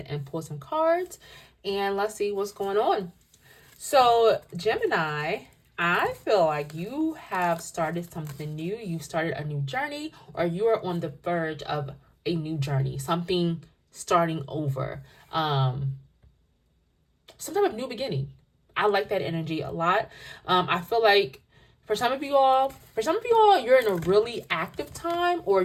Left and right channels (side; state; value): both; identical; correlation 1.00